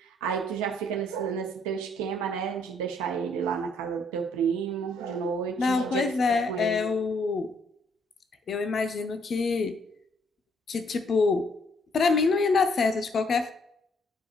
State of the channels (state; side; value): normal; both; correlation 0.67